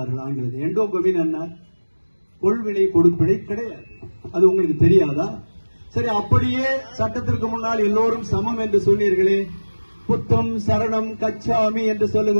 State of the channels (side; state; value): both; inverted; correlation -1.00